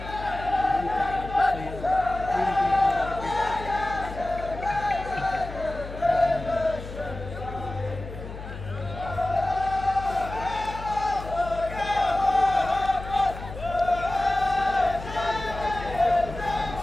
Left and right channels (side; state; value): left; noise; hum, 11 dB below the sound